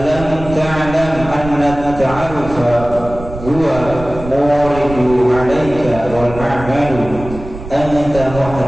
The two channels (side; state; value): right; noise; rumble, 12 dB below the sound